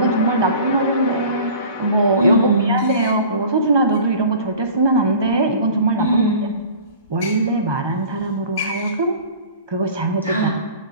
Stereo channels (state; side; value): inverted; both; correlation -0.43